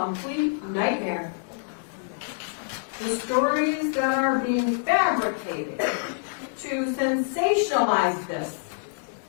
nightmare. The stories that are being fabricated to sensationalize this.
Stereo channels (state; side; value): silent; right; digital silence